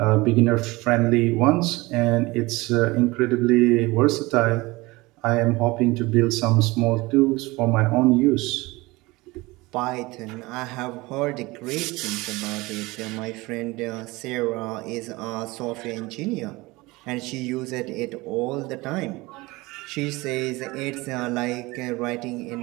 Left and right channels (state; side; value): quieter; left; 22.0 dB